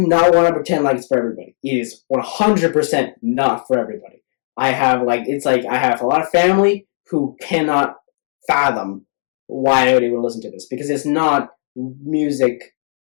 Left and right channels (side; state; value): right; silent; digital silence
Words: not want to pretend like it's for everybody. It is 100% not for everybody. I have a lot of family who cannot fathom why I would listen to this, because it's not music